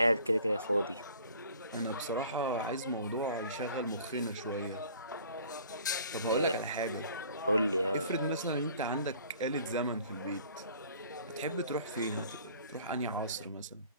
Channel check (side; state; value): both; inverted; correlation -0.51